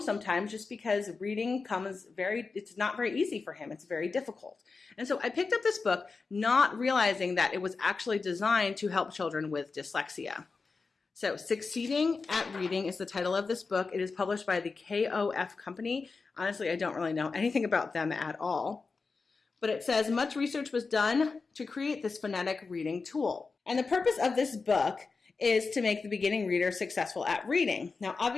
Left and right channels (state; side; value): quieter; right; 4.4 dB